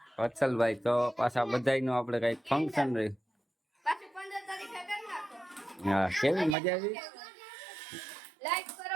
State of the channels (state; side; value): drops out; left; at 6.6 s